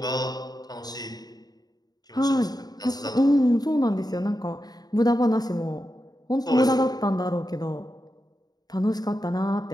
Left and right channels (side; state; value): right; late; 0.19 ms